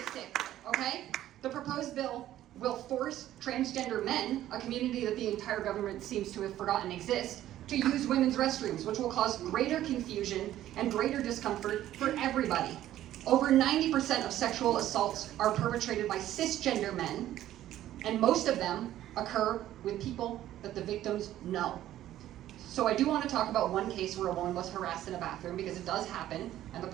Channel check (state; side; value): quieter; left; 13.1 dB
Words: okay? The proposed bill will force transgender men, a community that the entire government seems to have forgotten exists, to use women's restrooms, which will cause greater confusion and greater discomfort for everybody. Over 90% of sexual assaults are perpetrated by cisgender men, and most of them occur with people that the victims know. So I do want to talk about one case where a woman was harassed in a bathroom, because it does happen, and the